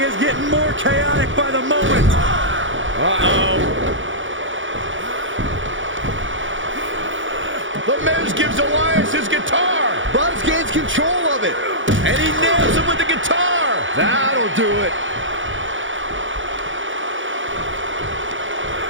is getting more chaotic by the moment. Uh-oh. The Miz gives Elias his guitar. Buzz gains control of it. And he nails him with the guitar. That'll do it.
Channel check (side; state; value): left; late; 0.56 ms